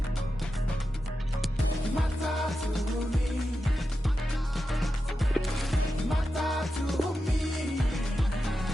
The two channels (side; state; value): both; normal; correlation 0.90